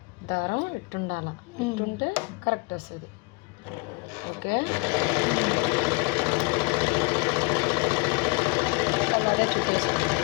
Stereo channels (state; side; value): quieter; right; 27.1 dB